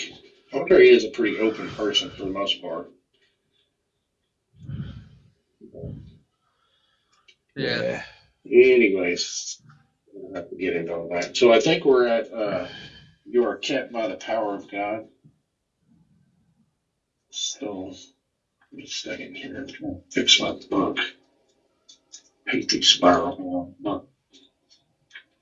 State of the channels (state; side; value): identical; both; correlation 1.00